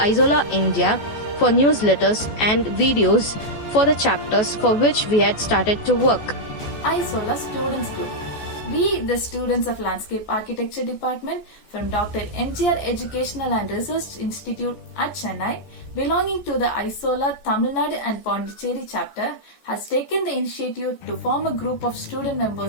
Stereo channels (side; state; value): right; late; 14 ms